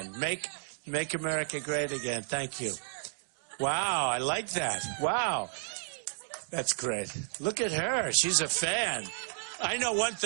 Make America great again. Thank you. Wow, I like that. Wow. That's great. Look at her. She's a fan. I know one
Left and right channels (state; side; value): silent; left; digital silence